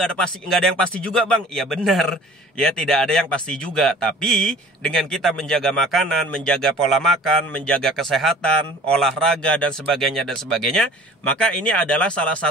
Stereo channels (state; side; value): normal; both; correlation 0.47